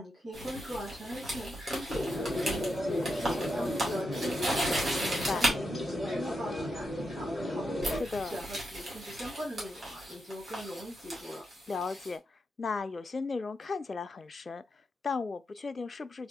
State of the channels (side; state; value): both; normal; correlation 0.85